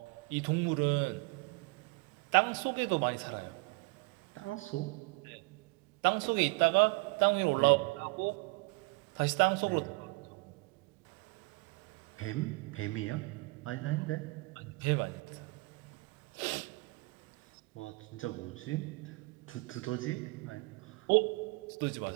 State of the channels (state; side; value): quieter; left; 26.7 dB